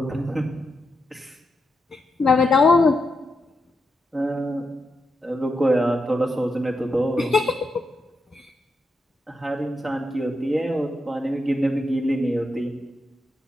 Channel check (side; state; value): both; normal; correlation 0.85